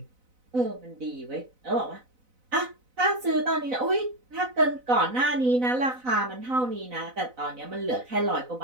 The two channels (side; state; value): left; late; 4.0 ms